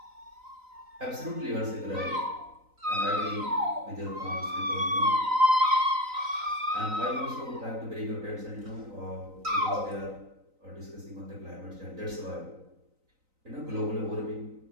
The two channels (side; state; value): left; late; 3.9 ms